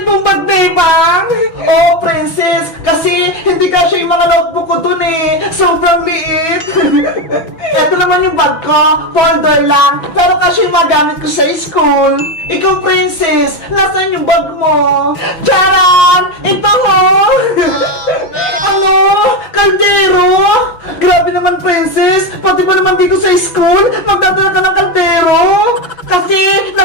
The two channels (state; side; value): late; right; 6.1 ms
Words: mong bag, Bebang! Oh, Princess, kasi hindi kasi yung mga notebook ko dun eh. Sobrang liit. Ito naman yung bag ko, folder lang. Pero kasi yung magamit ko sa school. Ikaw, Princess, nasaan yung bag mo? Charan! Ito, oh! Ano? Kaldero? Grabe naman, Princess. Pati ba naman dito sa school, magdadala ka ng kaldero? Kasi